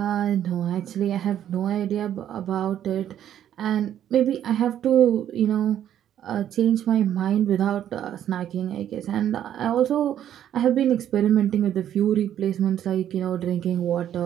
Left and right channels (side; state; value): left; quieter; 10.6 dB